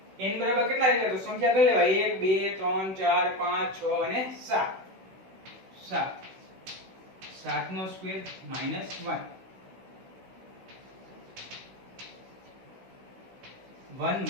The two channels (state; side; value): late; left; 16 ms